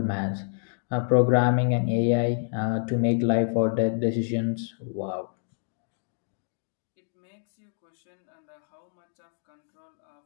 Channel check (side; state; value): right; silent; digital silence